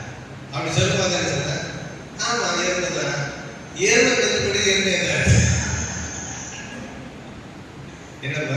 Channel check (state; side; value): identical; both; correlation 1.00